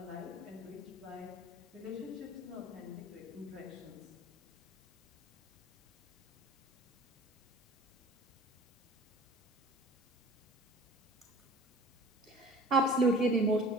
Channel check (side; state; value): both; normal; correlation 0.45